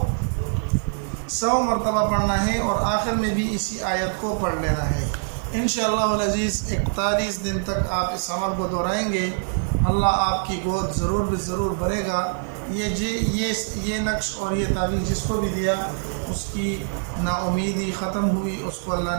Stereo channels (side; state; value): left; silent; digital silence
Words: 100 مرتبہ پڑھنا ہے، اور آخر میں بھی اسی آیت کو پڑھ لینا ہے۔ انشاءاللہ العزیز 41 دن تک آپ اس عمل کو دہرائیں گے، اللہ آپ کی گود ضرور ضرور بھرے گا۔ یہ نقش اور یہ تعویذ جس کو بھی دیا اس کی نا امیدی ختم ہوئی، اس کو اللہ